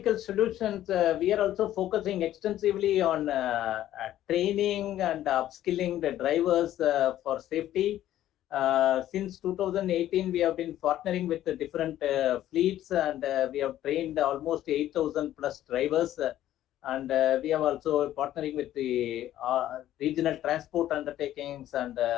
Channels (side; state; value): right; quieter; 12.8 dB